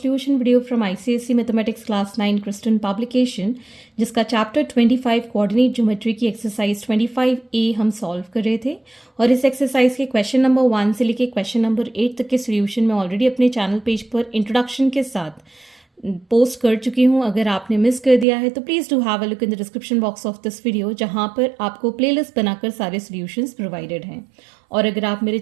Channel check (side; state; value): left; drops out; at 18.2 s